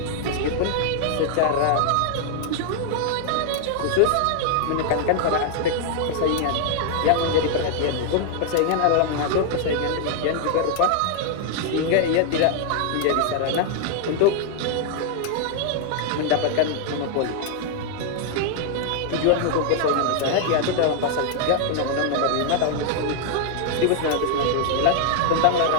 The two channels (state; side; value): different; both; correlation 0.00